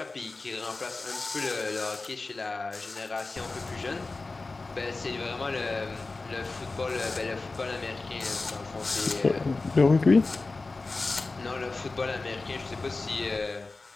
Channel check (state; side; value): quieter; right; 3.6 dB